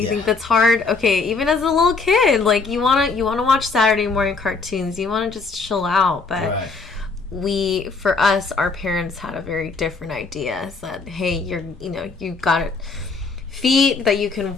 You think that's hard. Okay, even as a little kid, like, you wanna watch Saturday morning cartoons. You want to just chill out. But for us, our parents had a very different idea. Said, hey, you've got it. Feet that you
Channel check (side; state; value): right; quieter; 4.3 dB